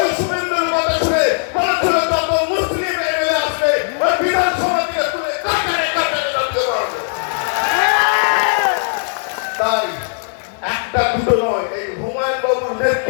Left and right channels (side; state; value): right; silent; 67 dB below the other